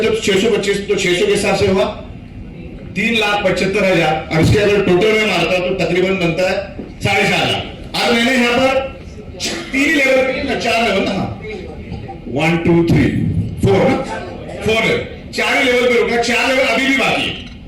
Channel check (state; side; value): identical; both; correlation 1.00